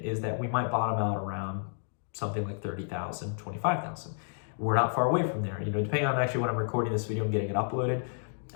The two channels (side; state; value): right; silent; digital silence